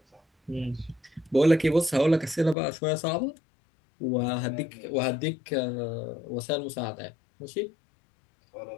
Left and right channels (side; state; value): right; drops out; at 2.6 s